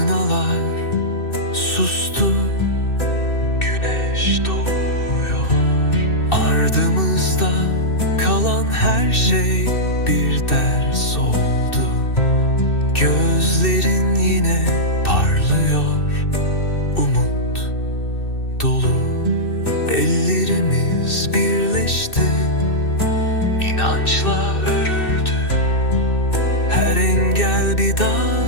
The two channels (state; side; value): late; right; 2.6 ms